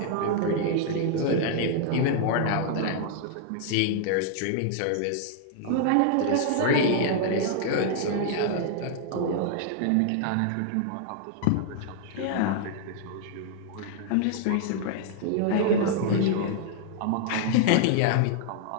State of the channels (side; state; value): both; different; correlation 0.00